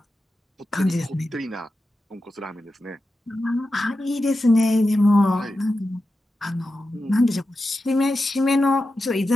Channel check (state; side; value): normal; both; correlation 0.91